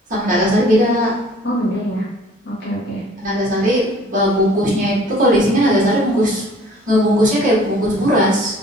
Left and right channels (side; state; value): both; normal; correlation 0.53